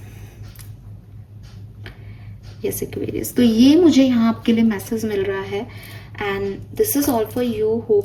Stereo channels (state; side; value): identical; both; correlation 1.00